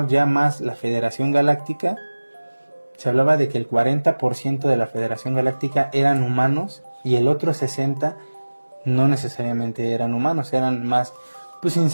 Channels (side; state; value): both; inverted; correlation -1.00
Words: ya más la Federación Galáctica, se hablaba de que el 40% de la Federación Galáctica eran humanos y el otro 60% no necesariamente eran humanos, eran más pues